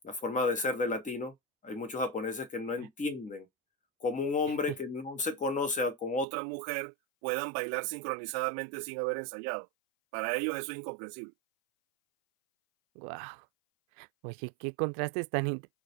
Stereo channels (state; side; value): drops out; left; at 6.2 s